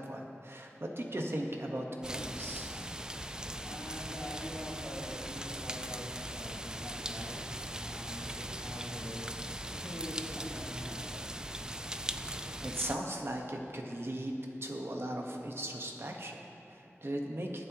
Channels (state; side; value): normal; both; correlation 0.70